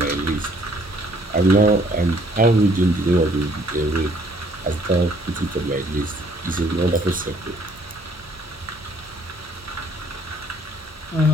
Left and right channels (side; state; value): both; normal; correlation 0.62